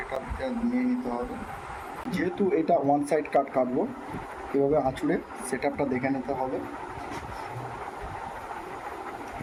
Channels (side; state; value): both; identical; correlation 1.00